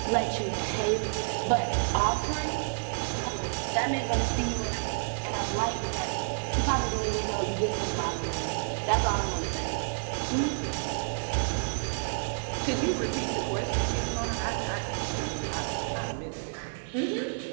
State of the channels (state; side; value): silent; left; digital silence